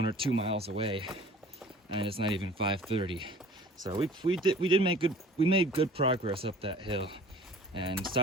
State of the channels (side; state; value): both; normal; correlation 0.46